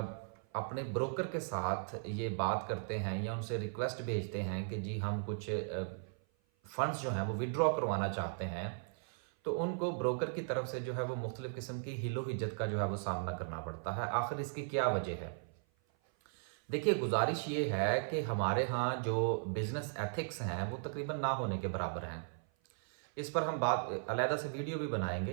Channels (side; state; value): left; silent; 53 dB below the other